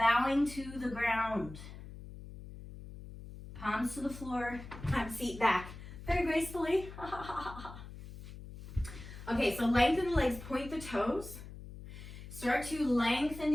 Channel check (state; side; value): noise; left; hum, 13 dB below the sound